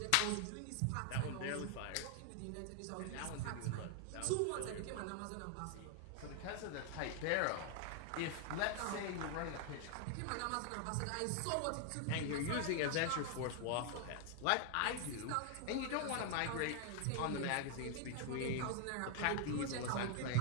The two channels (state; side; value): different; both; correlation 0.00